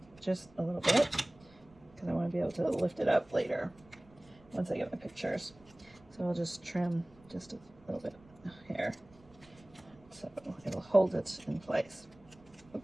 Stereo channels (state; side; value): noise; right; rumble, 26 dB below the sound